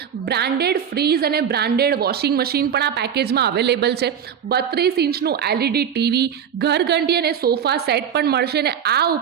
બ્રાન્ડેડ ફ્રીઝ અને બ્રાન્ડેડ વોશિંગ મશીન પણ આ પેકેજમાં અવેલેબલ છે. 32 ઇંચનું LED ટીવી, ઘરઘંટી અને સોફા સેટ પણ મળશે ને આ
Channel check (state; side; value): quieter; left; 8.3 dB